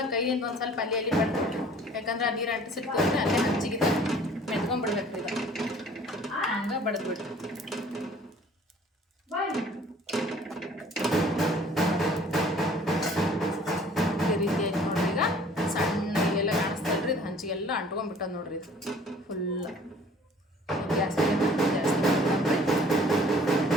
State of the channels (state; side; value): normal; both; correlation 0.53